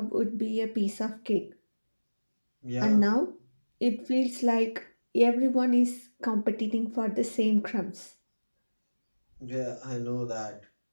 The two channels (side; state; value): both; inverted; correlation -1.00